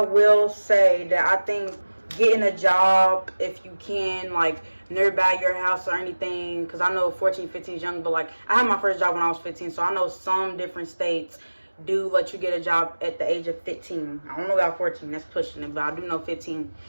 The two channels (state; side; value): inverted; both; correlation -1.00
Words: say that I think getting a job, if you can, like nearby your house or anything, because I know 14, 15 is young, but like I had my first job when I was 15, so I know some different states do let you get a job at the age of 15. I don't know about 14, that's pushing it, but I do know 15.